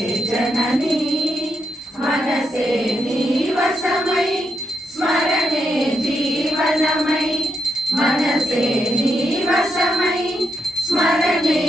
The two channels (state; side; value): normal; both; correlation 0.82